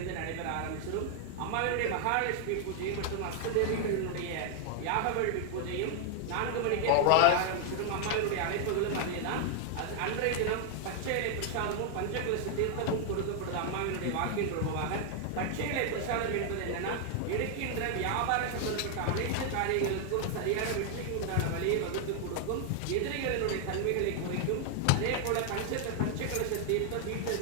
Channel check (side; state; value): both; different; correlation 0.00